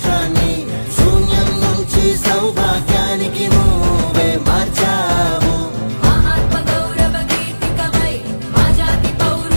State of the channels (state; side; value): inverted; both; correlation -1.00